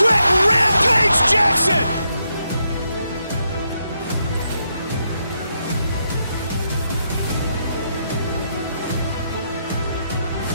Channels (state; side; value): inverted; both; correlation -0.80